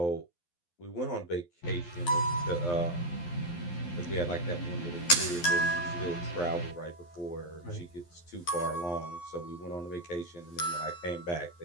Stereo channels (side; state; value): right; late; 12 ms